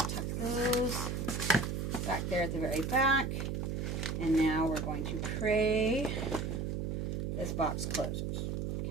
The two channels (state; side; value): noise; right; hum, 2 dB below the sound